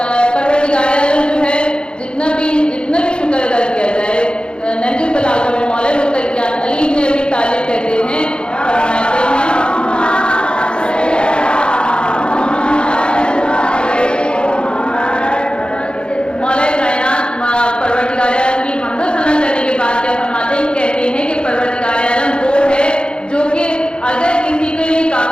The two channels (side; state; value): right; late; 0.053 ms